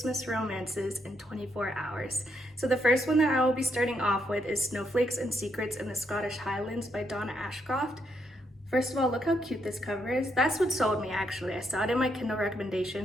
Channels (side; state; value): both; normal; correlation 0.77